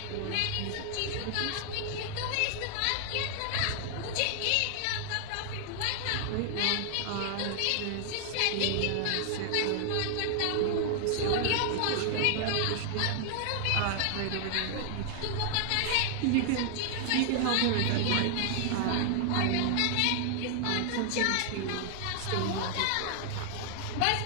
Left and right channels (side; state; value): both; different; correlation 0.00